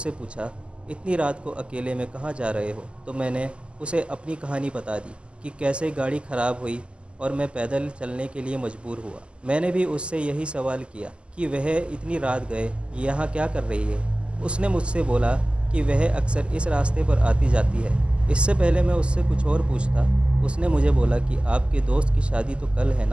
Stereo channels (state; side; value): late; left; 0.052 ms